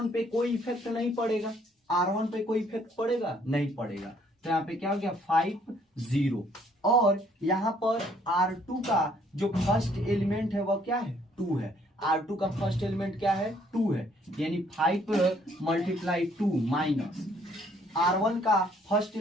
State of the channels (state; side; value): normal; both; correlation 0.64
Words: पे कोई इफेक्ट नहीं पड़ेगा, R1 पे कोई इफेक्ट पड़ेगा नहीं पड़ेगा। तो यहाँ पे क्या हो गया 5 0, और यहाँ पर R2 का जो फर्स्ट एलिमेंट है वह क्या है 2 है, R2 का फर्स्ट एलिमेंट क्या है 2 है, यानी 5 मल्टीप्लाई 2 माइनस R1 का फर्स्ट